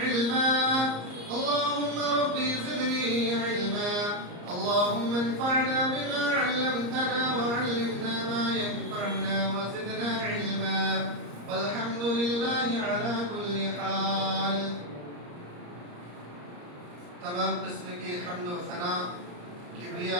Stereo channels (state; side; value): late; left; 34 ms